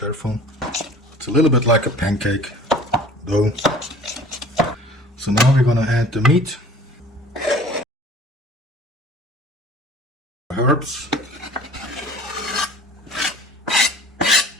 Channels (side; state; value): both; normal; correlation 0.47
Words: It's a little bit like a pancake dough. So now we're gonna add the meat, herbs,